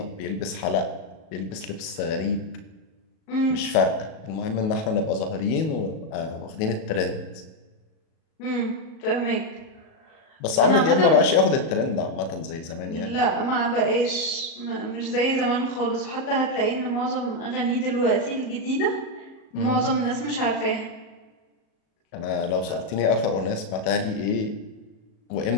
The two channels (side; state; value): right; late; 37 ms